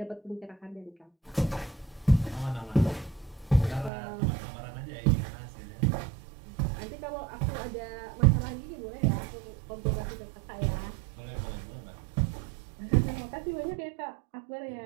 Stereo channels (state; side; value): drops out; left; at 3.9 s